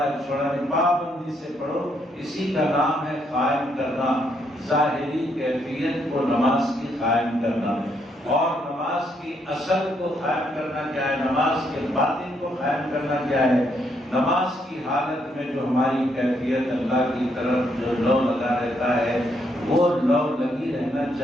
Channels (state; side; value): normal; both; correlation 0.74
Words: ایک چھوڑا نہیں، پابندی سے پڑھو، اسی کا نام ہے قائم کرنا۔ ظاہری کیفیت کو نماز کی قائم کرنا، اور نماز کی اصل کو قائم کرنا کیا ہے، نماز کے باطن کو قائم کرنا کیا ہے۔ نماز کی حالت میں جو ہماری کیفیت اللہ کی طرف جو لو لگا رہتا ہے وہ لو لگی رہنا